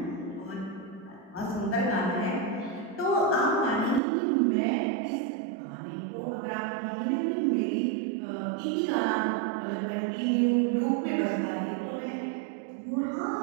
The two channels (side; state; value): left; drops out; at 4.0 s